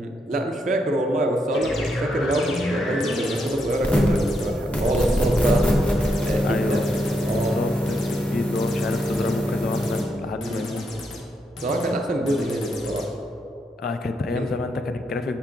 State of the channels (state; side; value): normal; both; correlation 0.79